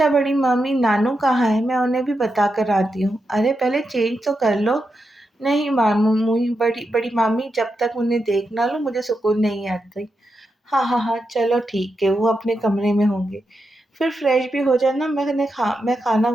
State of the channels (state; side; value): normal; both; correlation 0.87